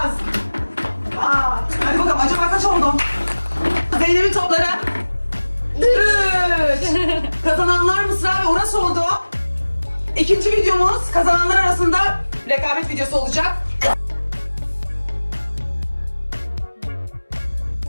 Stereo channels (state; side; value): inverted; both; correlation -1.00